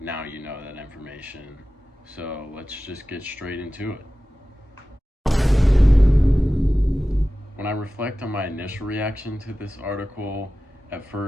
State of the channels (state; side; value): normal; both; correlation 0.95